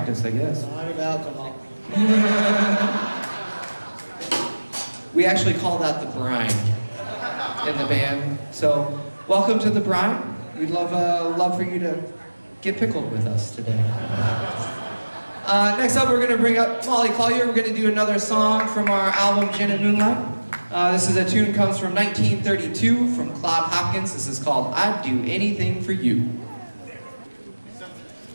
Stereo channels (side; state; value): both; inverted; correlation -1.00